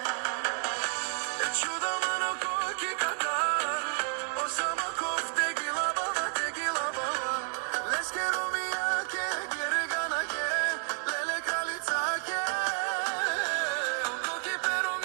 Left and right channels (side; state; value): left; silent; 57 dB below the other